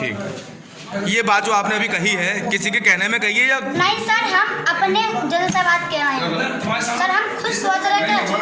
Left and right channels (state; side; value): identical; both; correlation 1.00